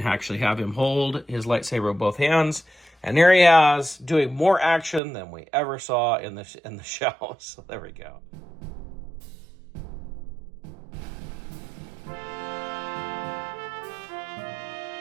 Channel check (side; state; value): left; drops out; at 5.0 s